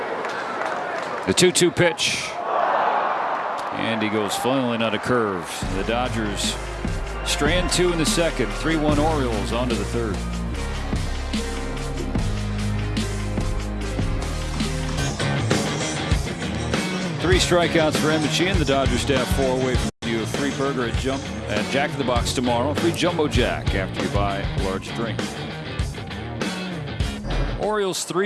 The 2-2 pitch. And he goes flailing out of curves. The Dodgers strand 2 in the second. 3-1 Orioles on to the third. Three strikeouts for Emmett Sheehan. The Dodgers staff 4 away from you. A free burger at Jack in the Box tomorrow. Free Jumbo Jack after you buy a large drink. Orioles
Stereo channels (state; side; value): identical; both; correlation 1.00